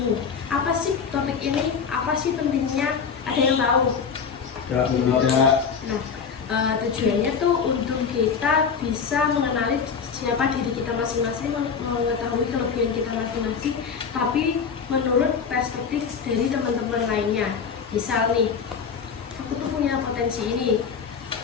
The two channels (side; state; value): right; quieter; 6.2 dB